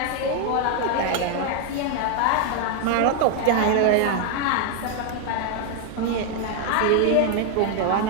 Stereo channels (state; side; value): different; both; correlation 0.00